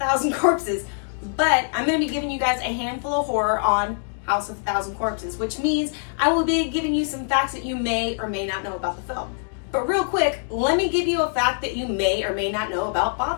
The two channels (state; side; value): silent; right; digital silence